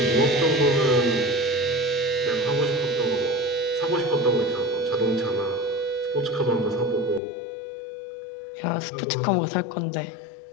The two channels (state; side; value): drops out; right; at 7.2 s